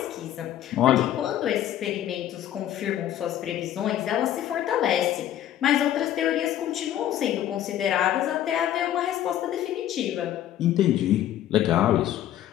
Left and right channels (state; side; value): quieter; right; 11.8 dB